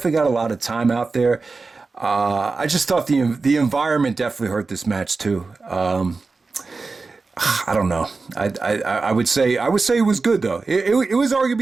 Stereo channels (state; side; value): quieter; left; 4.0 dB